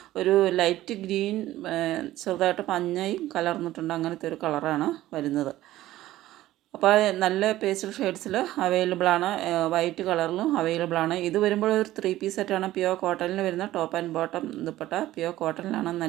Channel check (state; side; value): quieter; left; 15.1 dB